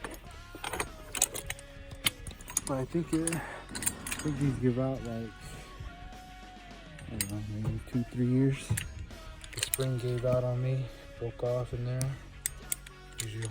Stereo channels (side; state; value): both; identical; correlation 1.00